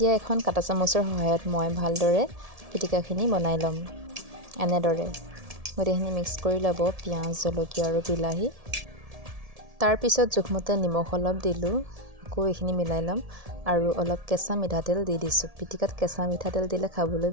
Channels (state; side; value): late; left; 1.7 ms